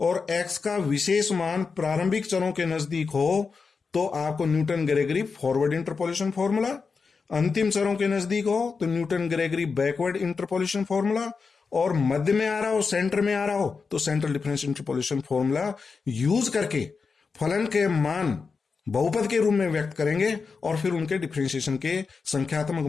x का विशेष मान प्रारंभिक चरों के नजदीक हो तो आपको Newton Gregory forward interpolation formula, अंतिम चरों के नजदीक हो तो Newton Gregory backward interpolation formula, और मध्य में आ रहा हो, सेंटर में आ रहा हो तो central difference interpolation formula use करके फलन के मान बहुपद के रूप में व्यक्त करेंगे और फिर उनके डिफरेंशिएशन के संख्यात्मक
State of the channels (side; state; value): right; quieter; 4.9 dB